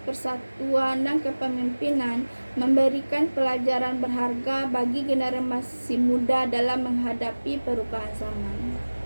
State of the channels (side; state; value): both; inverted; correlation -1.00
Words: persatuan, dan kepemimpinan memberikan pelajaran berharga bagi generasi muda dalam menghadapi perubahan zaman.